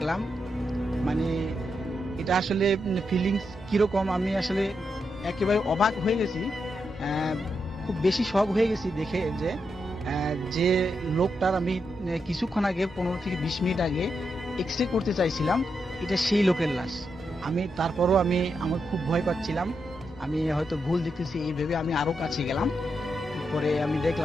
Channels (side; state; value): both; normal; correlation 0.84